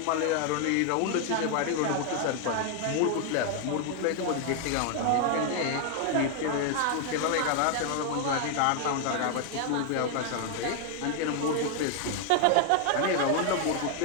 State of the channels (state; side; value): different; both; correlation 0.00